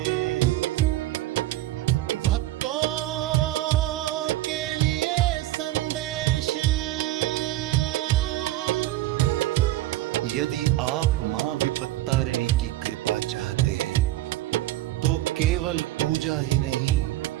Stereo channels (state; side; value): quieter; left; 15.7 dB